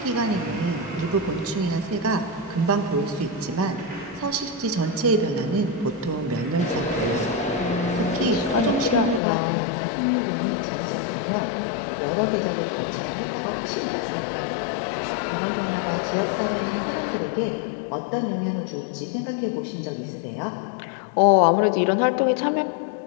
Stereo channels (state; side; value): drops out; right; at 9.2 s